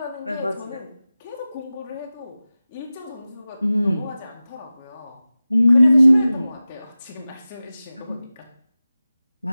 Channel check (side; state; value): both; inverted; correlation -0.96